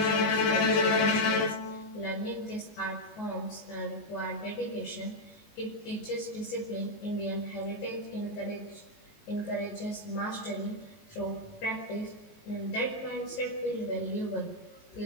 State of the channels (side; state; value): right; late; 19 ms